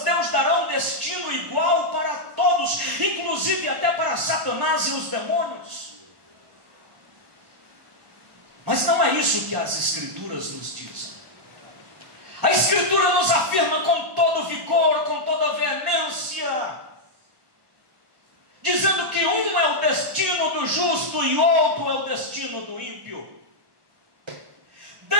Deus dará um destino igual para todos, inclusive até para Satanás e os demônios. Mas não é isso que as Escrituras nos dizem. A Escritura nos afirma com todo vigor, com toda veemência, dizendo que um é o destino do justo e outro é o destino do ímpio.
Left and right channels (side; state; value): left; late; 1.2 ms